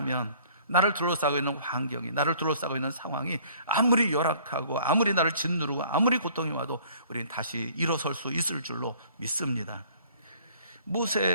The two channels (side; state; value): both; inverted; correlation -0.55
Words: 나를 둘러싸고 있는 환경이, 나를 둘러싸고 있는 상황이 아무리 열악하고 아무리 나를 짓누르고 아무리 고통이 와도 우리는 다시 일어설 수 있을 줄로 믿습니다.